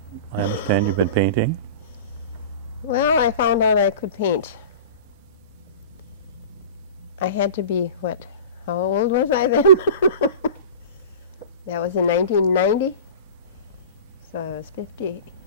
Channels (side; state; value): both; inverted; correlation -0.35